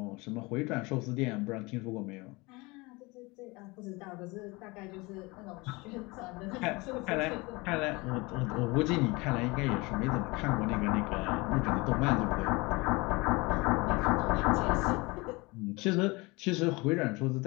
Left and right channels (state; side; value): quieter; right; 24.7 dB